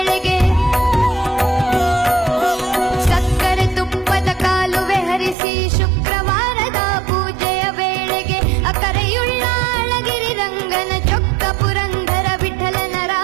ಸಕ್ಕರೆ ತುಪ್ಪದ ಕಾಲುವೆ ಹರಿಸಿ ಶುಕ್ರವಾರದ ಪೂಜೆಯ ವೇಳೆಗೆ, ಅಕರೆಯುಳ್ಳ ಅಳಗಿರಿ ರಂಗನ ಚೊಕ್ಕ ಪುರಂದರ ವಿಠಲನ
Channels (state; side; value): drops out; left; at 5.4 s